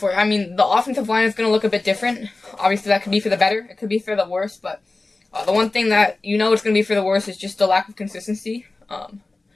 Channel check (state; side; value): quieter; right; 3.3 dB